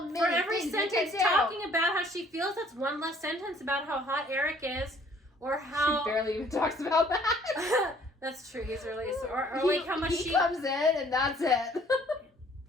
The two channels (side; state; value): both; normal; correlation 0.58